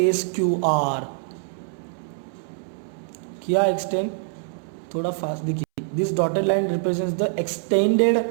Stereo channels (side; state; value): left; silent; 62 dB below the other